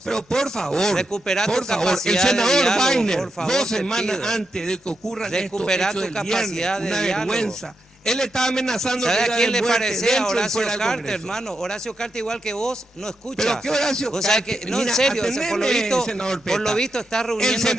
Pero por favor, Recupera tu por favor, el capacidad de senador diálogo, Wagner, por favor, 2 te semanas pido. antes de que ocurran estos Recupera hechos tu del capacidad viernes, de una diálogo. vergüenza. Él estaba amenazando ¿Sabe que a iba quién le muerte parece? dentro A y Horacio fuera del Carter, Congreso. hermano. Horacio Carter, igual que vos, no escucha. ¿Pero qué Horacio Vos sabés Carter? que, no, en Mira, serio, o sea, por lo atendeme, visto, senador por lo Peta. visto está El reuniéndote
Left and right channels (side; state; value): both; normal; correlation 0.85